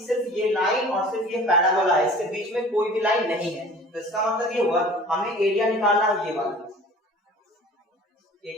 सिर्फ ये लाइन और सिर्फ ये पैराबोला है, इसके बीच में कोई भी लाइन नहीं है। तो इसका मतलब ये हुआ हमें एरिया निकालना है, ये वाला, ये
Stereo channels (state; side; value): normal; both; correlation 0.45